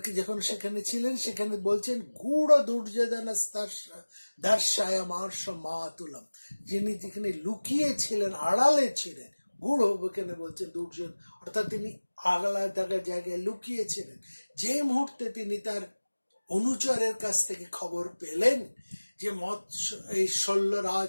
যখন সেখানে ছিলেন, সেখানে বলছেন গূঢ় দুর্যোধন দর্শায় মার্শ মাতুলম, যিনি যেখানে লুকিয়েছিলেন, আড়ালে ছিলেন, গূঢ় এখানে বলছেন দুর্যোধন, অর্থাৎ তিনি আলাদা জায়গায় লুকিয়েছিলেন। যে মুহূর্তে তিনি তার অনুচরের কাছ থেকে খবর পেলেন যে এই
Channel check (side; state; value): both; inverted; correlation -1.00